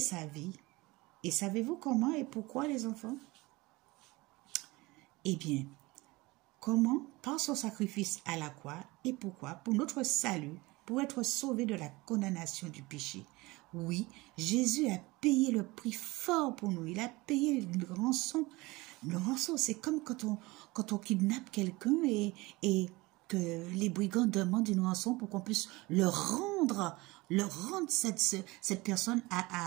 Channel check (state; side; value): quieter; left; 22.1 dB